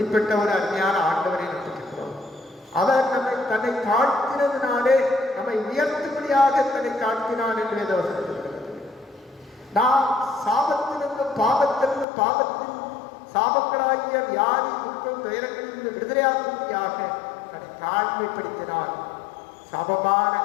ஒரு அருமையான ஆண்டவரை நம்பிக்கிறோம். அவர் நம்மை தன்னை தாழ்த்தினதினாலே நம்மை உயர்த்தும்படியாக தன்னை தாழ்த்தினார் என்று வேதவசனம் சொல்கிறது. நாம் சாபத்திலிருந்தும் பாவத்திலிருந்து பாவத்தின் சாபங்களாகிய வியாதி துக்கம் துயரங்களிலிருந்து விடுதலையாகும்படியாக தன்னை தாழ்மைப்படுத்தினார். சாபமான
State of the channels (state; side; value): drops out; right; at 12.1 s